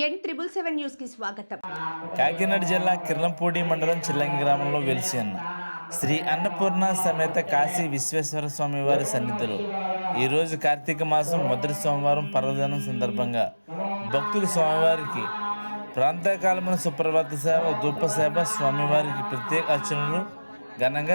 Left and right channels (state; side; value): inverted; both; correlation -1.00